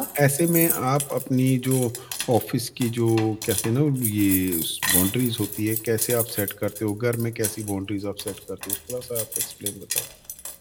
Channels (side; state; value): both; identical; correlation 1.00